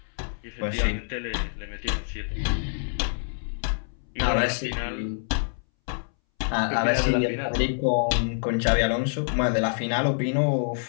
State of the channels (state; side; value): silent; right; 61 dB below the other